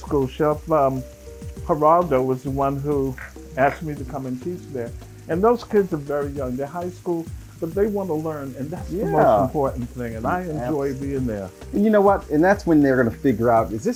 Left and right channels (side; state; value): both; identical; correlation 1.00